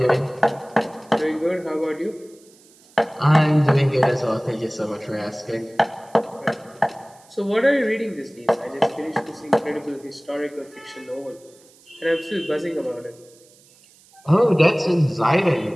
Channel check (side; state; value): right; noise; hiss, 28 dB below the sound